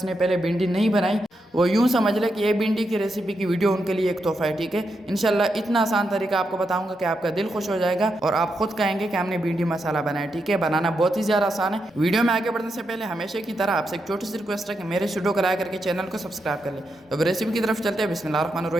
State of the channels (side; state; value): both; normal; correlation 0.84